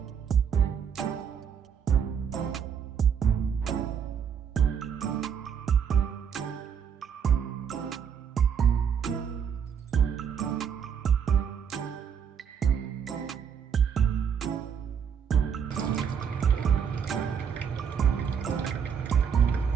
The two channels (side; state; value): left; quieter; 7.4 dB